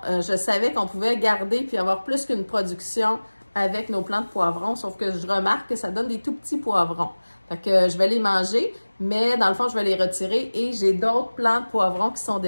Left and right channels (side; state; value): both; inverted; correlation -1.00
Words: je savais qu'on pouvait garder puis avoir plus qu'une production avec nos plants de poivrons, sauf que je remarque que ça donne des tout petits poivrons. Fait que je vais les manger, mais dans le fond, je vais les retirer et j'ai d'autres plants de poivrons qui sont